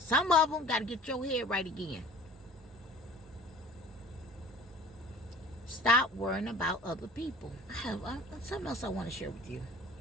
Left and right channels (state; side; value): normal; both; correlation 0.45